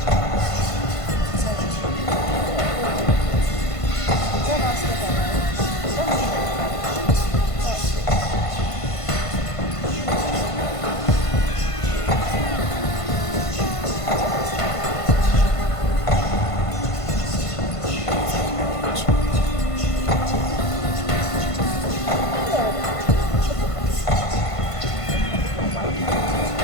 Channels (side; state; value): right; late; 1.5 ms